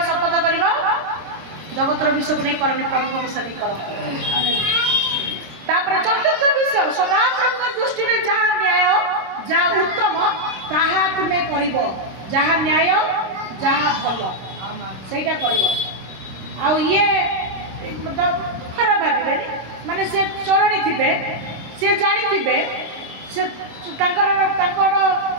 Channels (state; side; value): late; left; 26 ms